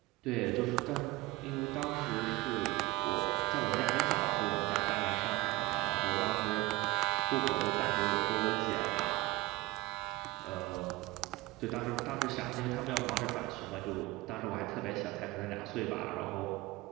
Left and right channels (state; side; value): quieter; left; 21.2 dB